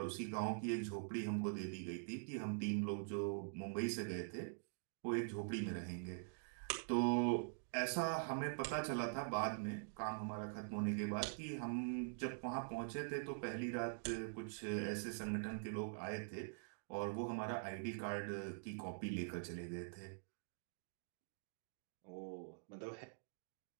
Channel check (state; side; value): silent; left; digital silence